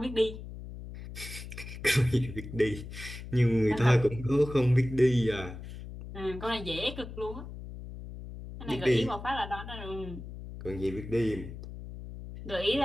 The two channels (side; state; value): left; noise; hum, 11 dB below the sound